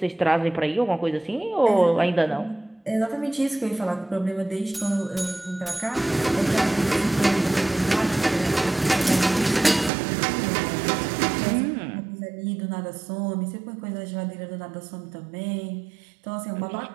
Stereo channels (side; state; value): left; drops out; at 9.9 s